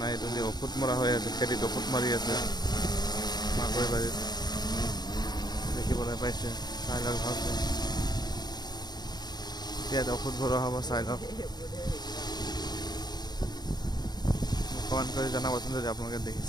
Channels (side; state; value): right; late; 0.20 ms